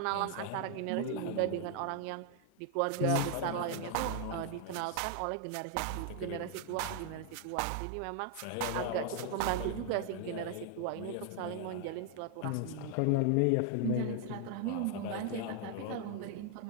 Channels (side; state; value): both; different; correlation 0.00